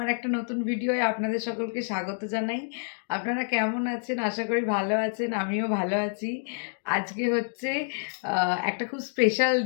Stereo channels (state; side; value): silent; right; 59 dB below the other